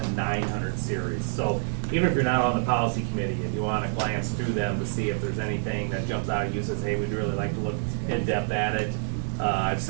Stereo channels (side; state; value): left; silent; digital silence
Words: 900 series. So even if you're not on the policy committee, if you want to glance through them to see if there's anything that jumps out at you, says, hey, we'd really like to look in depth at it. I've